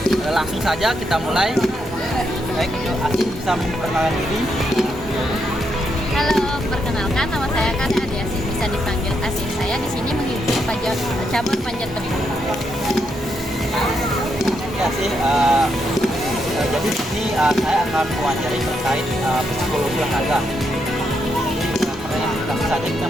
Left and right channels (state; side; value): normal; both; correlation 0.80